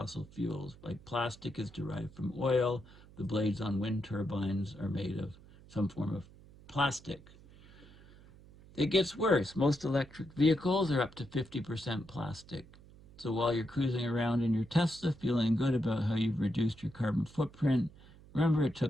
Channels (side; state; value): right; noise; hum, 22 dB below the sound